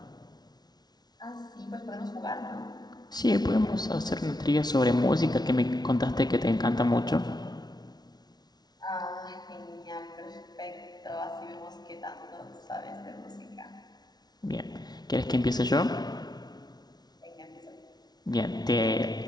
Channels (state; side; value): late; right; 0.19 ms